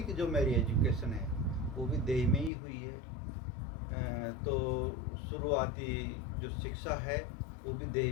जो मेरी एजुकेशन है वो भी देई में ही हुई है। तो शुरुआती जो शिक्षा है वो भी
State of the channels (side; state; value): right; drops out; at 2.5 s